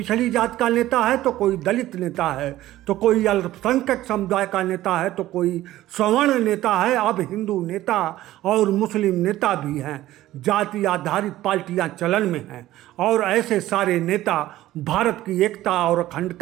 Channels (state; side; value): quieter; left; 15.1 dB